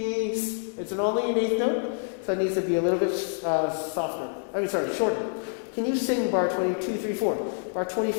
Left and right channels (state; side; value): silent; right; digital silence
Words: It's an only an eighth note, so it needs to be a little bit shorter. Can you sing bar 22, 3, 4? Bar